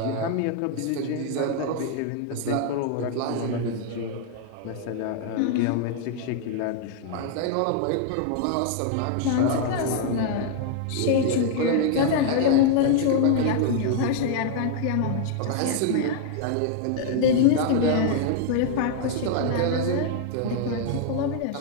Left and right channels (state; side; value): different; both; correlation 0.00